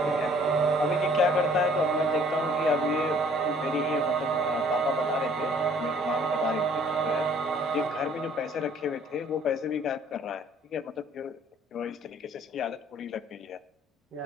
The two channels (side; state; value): both; normal; correlation 0.57